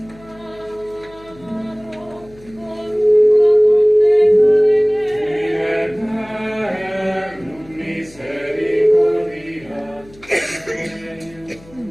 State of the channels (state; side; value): noise; left; hum, 24 dB below the sound